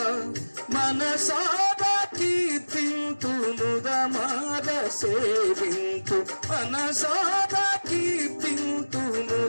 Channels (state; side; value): inverted; both; correlation -1.00